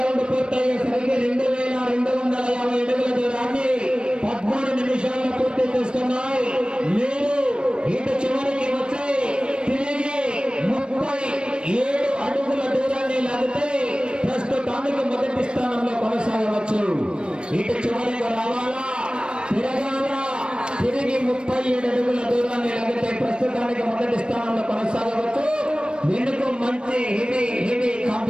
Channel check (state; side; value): late; left; 0.054 ms